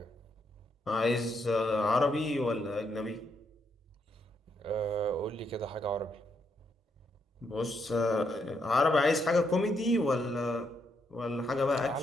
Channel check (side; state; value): both; normal; correlation 0.77